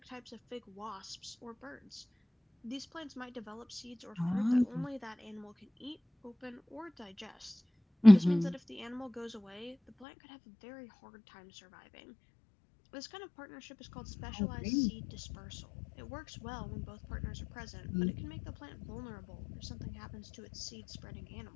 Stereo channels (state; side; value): drops out; right; at 10.1 s